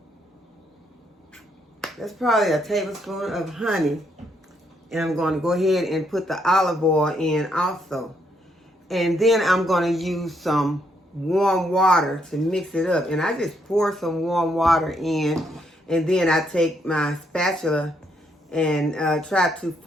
That's probably a tablespoon of honey. And I'm going to go ahead and put the olive oil in also. And then I'm going to use some warm water to mix it up. And I just pour some warm water in. And then I take my spatula and try to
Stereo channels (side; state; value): both; normal; correlation 0.74